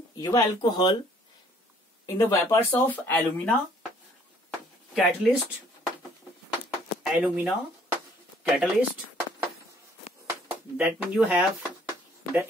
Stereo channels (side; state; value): both; normal; correlation 0.60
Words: your alcohol in the vapors of alumina catalyst, that means you have the